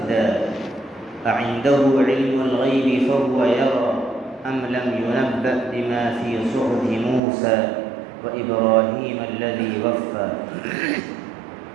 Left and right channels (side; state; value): left; drops out; at 7.2 s